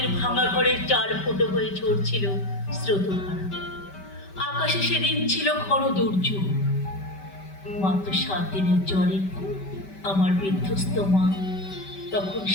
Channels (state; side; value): late; right; 5.2 ms